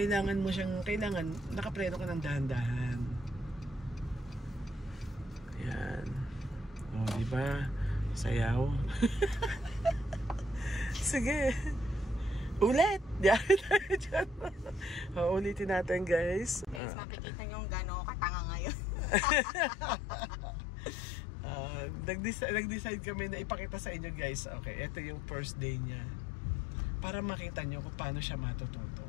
mo siyang, nakapreno ka ng dahan-dahan. Yan. Diba? Sayaw. Sige. Ulit! Ulitin natin guys. Guys, makikita nyo gano'n katanga ngayon. Nag-decide kami na ipakita sa inyo guys. Okay, ito yung first day niya. Para makita nyo kung paano siya matututo.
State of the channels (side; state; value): right; drops out; at 16.8 s